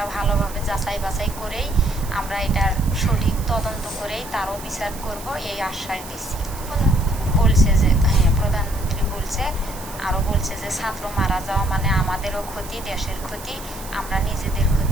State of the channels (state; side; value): noise; right; hiss, 15 dB below the sound